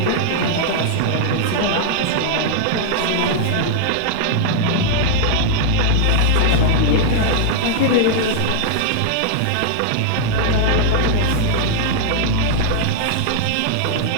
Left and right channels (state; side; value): different; both; correlation -0.01